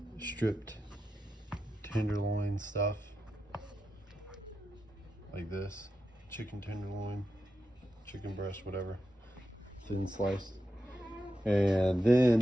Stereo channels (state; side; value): normal; both; correlation 0.89